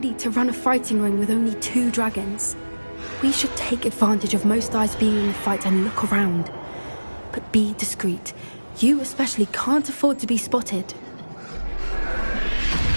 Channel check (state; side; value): inverted; both; correlation -1.00